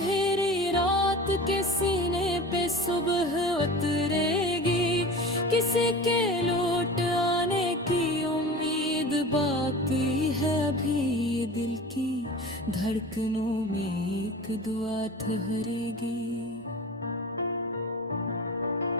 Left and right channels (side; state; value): both; normal; correlation 0.35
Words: रात के सीने पे सुबह उतरेगी। किसी के लौट आने की उम्मीद बाकी है अभी, दिल की धड़कनों में एक दुआ ठहरेगी।